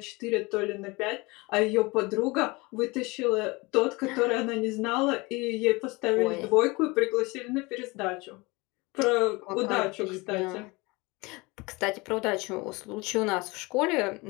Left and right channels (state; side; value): quieter; right; 24.7 dB